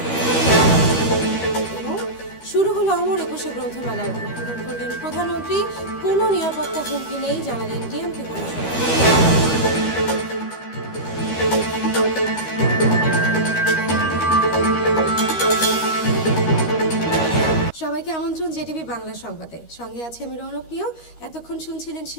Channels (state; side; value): late; right; 13 ms